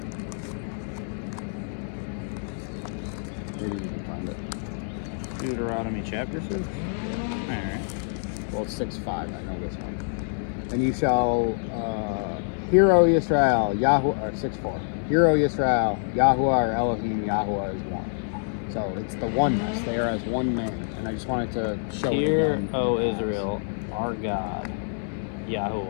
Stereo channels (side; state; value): right; silent; 61 dB below the other